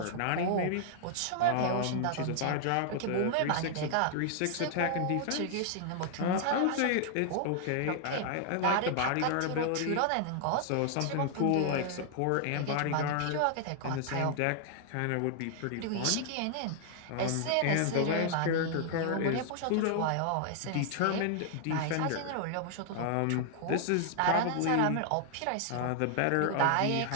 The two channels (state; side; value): different; both; correlation 0.00